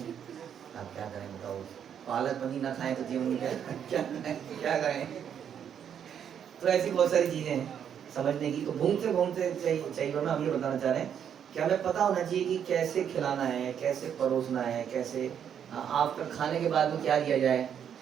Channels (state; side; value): quieter; left; 8.6 dB